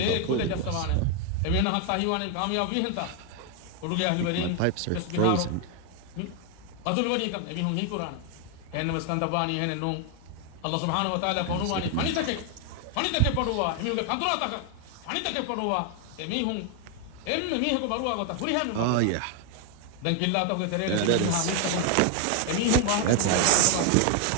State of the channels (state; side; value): different; both; correlation 0.01